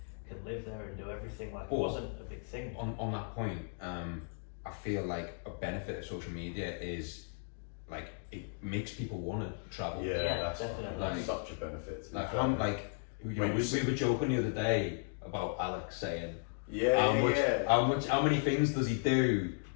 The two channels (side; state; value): right; silent; 54 dB below the other